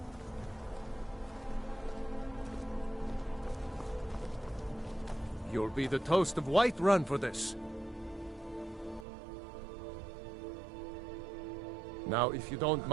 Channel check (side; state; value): left; drops out; at 9.1 s